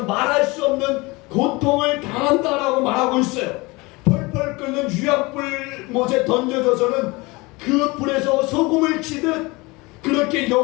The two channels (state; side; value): quieter; right; 24.2 dB